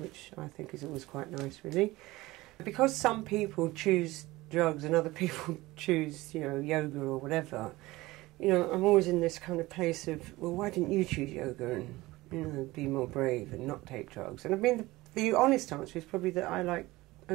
I think is always quite nice, really. Because some people choose drugs and other people choose, you know, yoga or whatever, you know, I'm always in this kind of place of, well, why didn't you choose yoga and, you know, be more brave and not take drugs? And I mean, the honest answer is probably that I like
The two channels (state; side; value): quieter; left; 19.4 dB